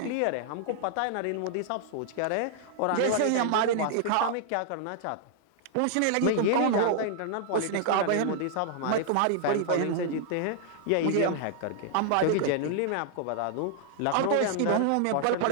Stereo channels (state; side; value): different; both; correlation -0.01